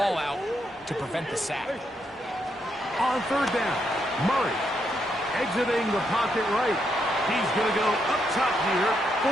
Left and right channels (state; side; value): normal; both; correlation 0.79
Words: out to prevent the sack. On 3rd down, Murray exiting the pocket right. He's going to go up top here